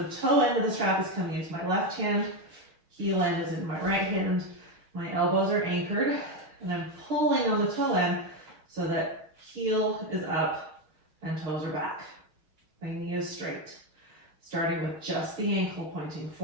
toe end of the strap is coming into my left hand, heel end is in my right hand, my elbows are anchored, and I'm pulling on the toe end so that heel is up and toes are back. My knee is straight, starting with just the ankle pointing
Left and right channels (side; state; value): left; late; 6.4 ms